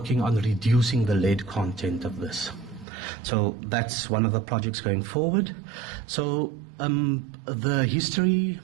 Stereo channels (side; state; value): left; drops out; at 2.9 s